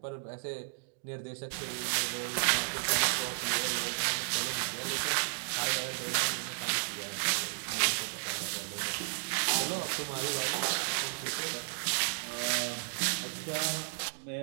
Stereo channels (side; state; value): left; silent; digital silence